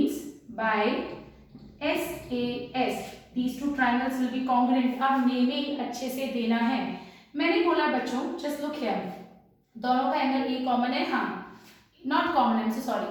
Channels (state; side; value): identical; both; correlation 1.00